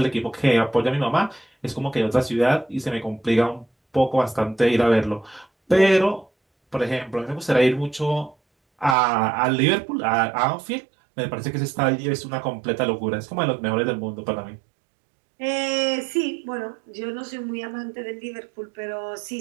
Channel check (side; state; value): left; drops out; at 9.0 s